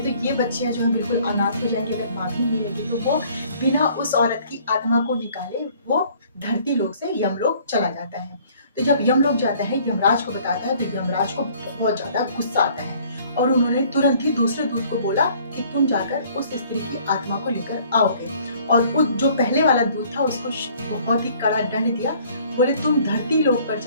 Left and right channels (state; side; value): inverted; both; correlation -0.57